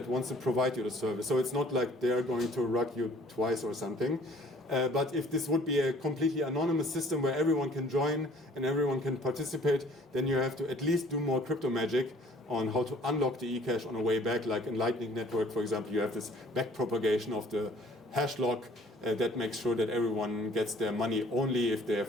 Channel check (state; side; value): normal; both; correlation 0.54